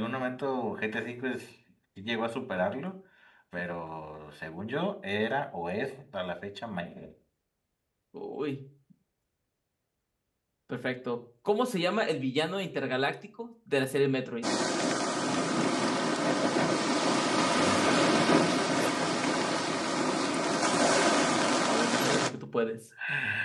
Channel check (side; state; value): both; identical; correlation 1.00